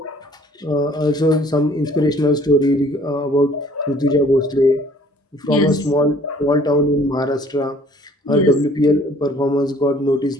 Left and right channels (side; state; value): both; normal; correlation 0.56